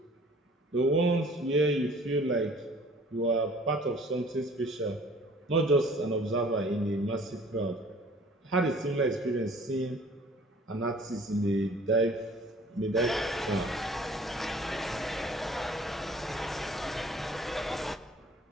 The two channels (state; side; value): normal; both; correlation 0.52